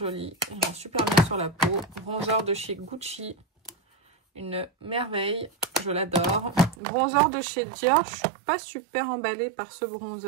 Il rend super bien sur la peau. Bronzer de chez Gucci. Une merveille. Je l'adore. Bronzer de chez Dior. Je suis pas super emballée par ce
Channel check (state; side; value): drops out; left; at 6.8 s